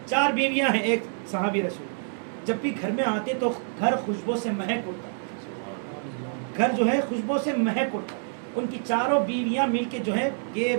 4 بیویاں ہیں. ایک صحابی رسول جب بھی گھر میں آتے تو گھر خوشبو سے مہک اٹھتا. گھر جو ہے خوشبو سے مہک اٹھتا. ان کی 4 بیویاں مل کے جو ہے یہ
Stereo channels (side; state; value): left; silent; digital silence